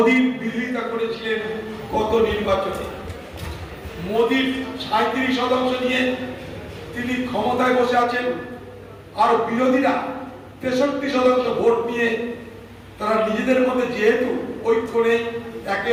বিরোধিতা করেছিলেন গত নির্বাচনে। মোদীর 37% নিয়ে তিনি ক্ষমতায় বসে আছেন, আর বিরোধীরা 63% ভোট নিয়ে তারা নিজেদের মধ্যে যেহেতু ঐক্য নেই, একে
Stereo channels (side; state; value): both; identical; correlation 1.00